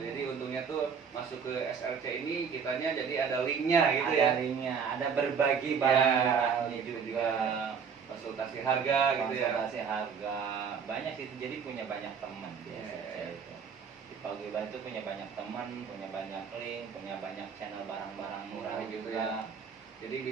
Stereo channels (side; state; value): left; quieter; 6.5 dB